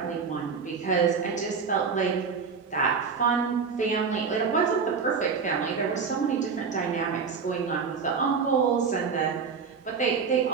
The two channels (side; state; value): left; quieter; 5.6 dB